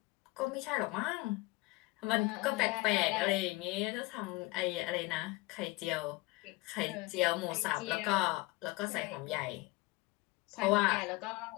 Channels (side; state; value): right; quieter; 22.5 dB